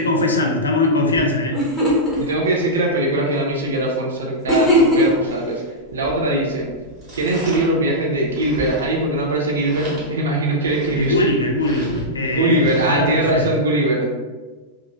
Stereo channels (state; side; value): normal; both; correlation -0.11